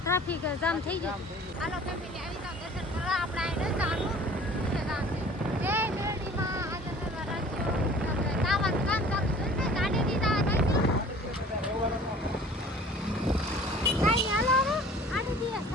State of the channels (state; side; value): normal; both; correlation 0.48